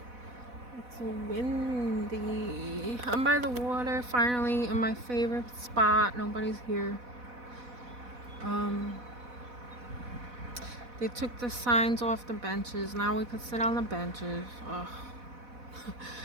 It's windy. I'm by the water finally in my favorite spot. Nobody's here. They took the signs off the benches. Now we could sit on the benches. Ugh.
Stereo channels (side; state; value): left; late; 4.1 ms